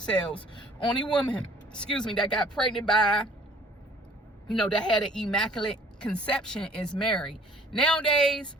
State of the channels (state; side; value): normal; both; correlation 0.54